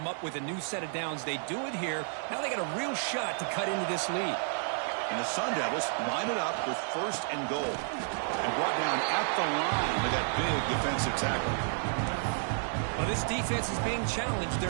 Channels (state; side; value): silent; left; 57 dB below the other